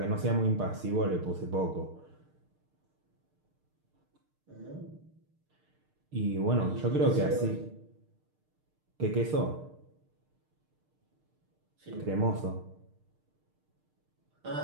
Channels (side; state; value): left; late; 6.6 ms